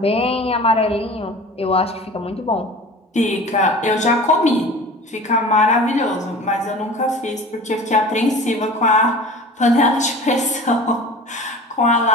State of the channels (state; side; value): normal; both; correlation 0.39